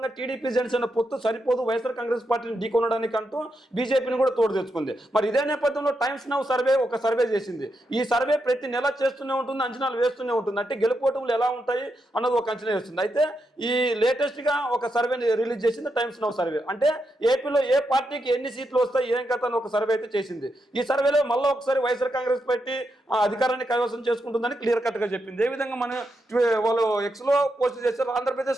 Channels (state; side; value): normal; both; correlation 0.83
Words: టీడీపీ జనసేన పొత్తు సరిపోదు, వైఎస్ఆర్ కాంగ్రెస్ పార్టీని ఢీకొనడానికి అంటూ బీజేపీని కూడా తోడు తెచ్చుకుంది. మరి ఇదే నేపథ్యంలో టైమ్స్ నౌ సర్వే ఒక సర్వే చేసింది. ఈ సర్వే ప్రతి నెల చేస్తూనే ఉంటుంది, అంచనాలు వేస్తూనే ఉంటుంది. అంటే గెలుపోటములు ఎలా ఉంటాయి అన్నది ఒక అంచనా వేస్తుంది. అయితే ఈ లేటెస్ట్ గా ఒక సర్వేని రిలీజ్ చేసింది టైమ్స్ నౌ సర్వే. అంటే ఏపీలో ఏ పార్టీకి ఎన్ని సీట్లు వస్తాయి, ఏం కథ అని ఒక సర్వే అయితే చేసింది. ఈ సర్వేలో మళ్ళీ ఒకసారి వైఎస్ఆర్ కాంగ్రెస్ పార్టీ అధికారాన్ని కైవసం చేసుకుంటుందని క్లియర్ కట్ గా చెప్పింది. ఏ విధంగా మనం వాళ్ళు ఎక్స్ లో పోస్ట్ చేశారు.